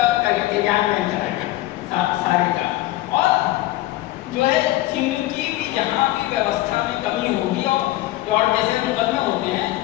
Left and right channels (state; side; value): quieter; right; 16.8 dB